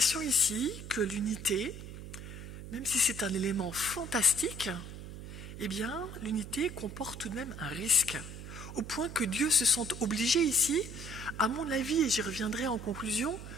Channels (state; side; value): noise; right; hum, 11 dB below the sound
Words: ici que l'unité, même si c'est un élément fantastique, eh bien, l'unité comporte tout de même un risque, au point que Dieu se sente obligé ici, à mon avis, et j'y reviendrai en conclusion,